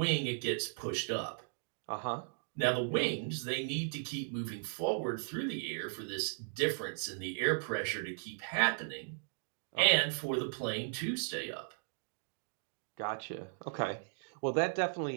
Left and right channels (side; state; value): left; silent; digital silence